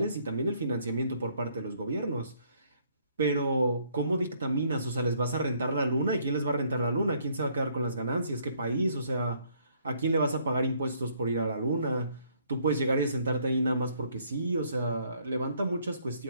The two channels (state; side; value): inverted; both; correlation -0.66